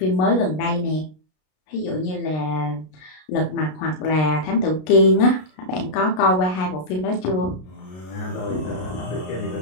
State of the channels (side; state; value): right; late; 33 ms